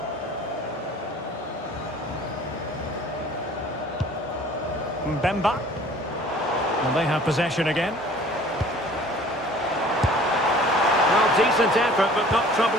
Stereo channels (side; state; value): both; normal; correlation 0.50